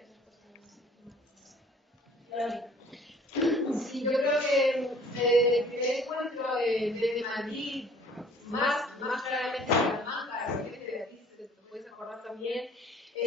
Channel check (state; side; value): normal; both; correlation 0.54